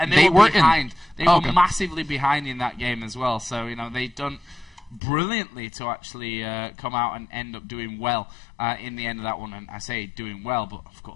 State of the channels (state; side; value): drops out; right; at 5.0 s